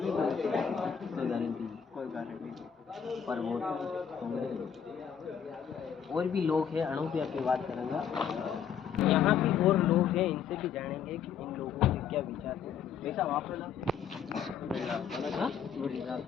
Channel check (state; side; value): quieter; right; 7.8 dB